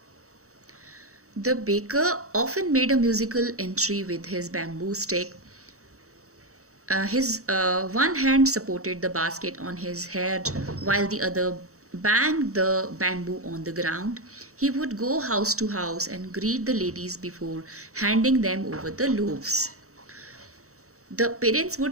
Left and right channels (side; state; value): left; late; 0.64 ms